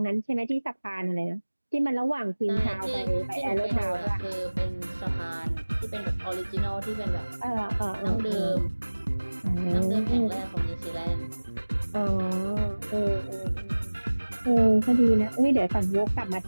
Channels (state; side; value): inverted; both; correlation -1.00